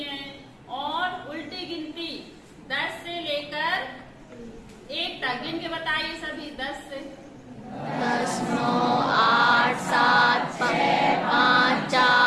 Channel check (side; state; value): both; identical; correlation 1.00